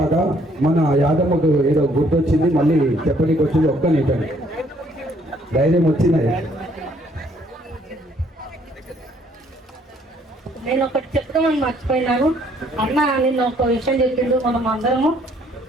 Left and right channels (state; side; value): normal; both; correlation 0.64